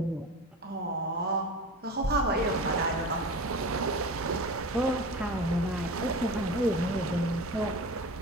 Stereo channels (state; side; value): normal; both; correlation 0.32